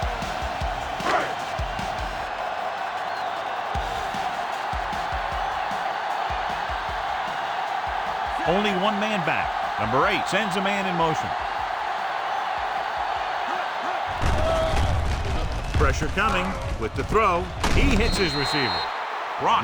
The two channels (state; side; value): identical; both; correlation 1.00